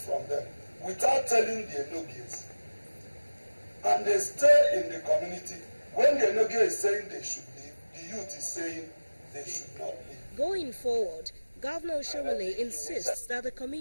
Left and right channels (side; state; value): both; inverted; correlation -1.00